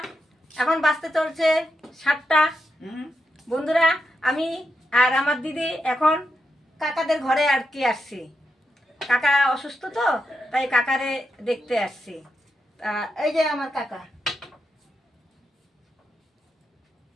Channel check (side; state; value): both; normal; correlation 0.85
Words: এখন বাজতে চলছে 7টা। বন্ধুরা, আমি আর আমার দিদি এখন কাকাদের ঘরে আর কি আসছি। কাকা অসুস্থ তো, তাই কাকারে দেখতে আসছি। এই যে আমার কাকা,